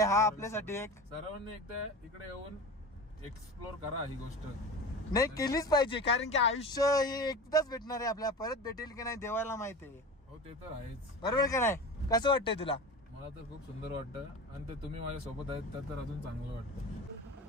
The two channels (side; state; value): both; normal; correlation 0.31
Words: हा आपल्यासाठी एक. सर्वांनी एकदा इकडे येऊन एक्सप्लोर करा ही गोष्ट. नाही केलीच पाहिजे, कारण की आयुष्य हे एकदाच भेटणार आहे आपल्याला, परत भेटेल की नाही देवाला माहिती आहे. हो ते तर आहेच. बरोबर का नाही? कसं वाटतंय तुला? मला तर खूप सुंदर वाटतं आणि ते तुम्ही माझ्या सोबत आहेत तर अजून चांगलं